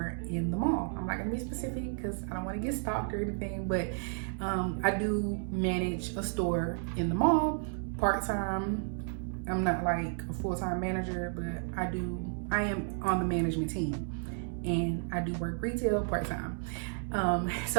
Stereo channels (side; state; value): left; silent; digital silence